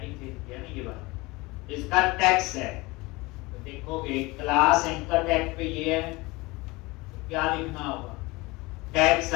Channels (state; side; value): quieter; right; 23.1 dB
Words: दे दिया ना, ये बात इसका टेक्स्ट है, तो देखोगे क्लास एंकर टैग पे ये है, तो क्या लिखना होगा, टेक्स्ट